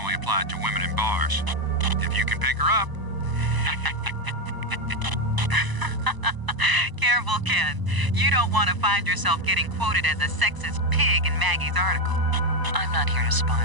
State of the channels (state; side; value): late; left; 1.0 ms